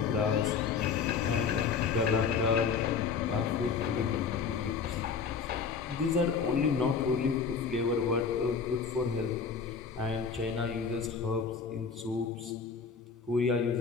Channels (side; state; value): right; quieter; 5.8 dB